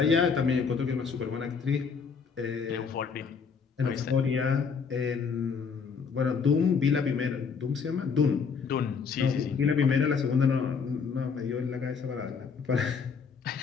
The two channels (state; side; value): quieter; right; 5.8 dB